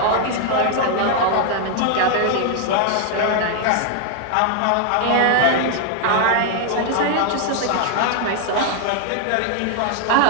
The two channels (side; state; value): both; different; correlation 0.00